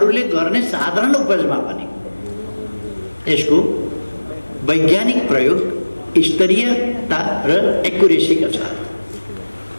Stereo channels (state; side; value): inverted; both; correlation -1.00